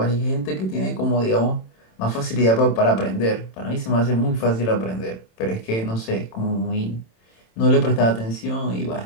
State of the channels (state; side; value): late; right; 27 ms